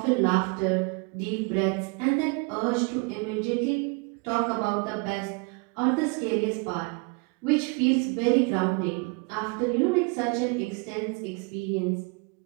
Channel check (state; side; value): quieter; left; 31.4 dB